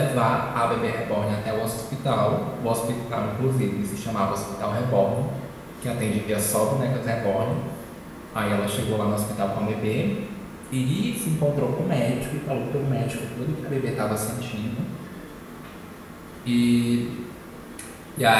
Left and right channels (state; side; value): identical; both; correlation 1.00